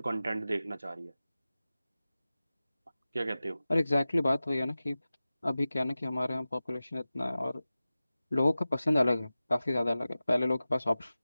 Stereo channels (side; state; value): both; inverted; correlation -0.96